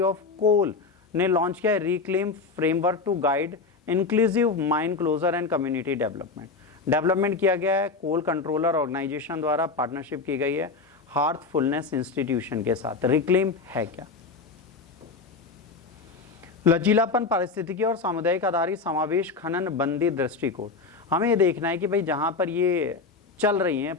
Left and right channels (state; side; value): quieter; right; 4.3 dB